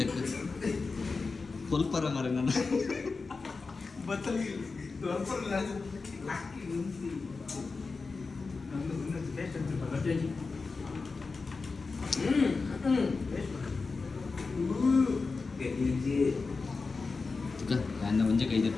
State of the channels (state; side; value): quieter; right; 4.3 dB